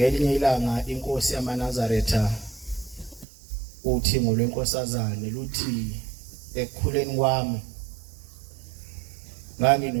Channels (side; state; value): left; drops out; at 3.2 s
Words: ilanga inkosi yamaNazaretha uthi ngolwenkosazane luthi ekukhuleni kwami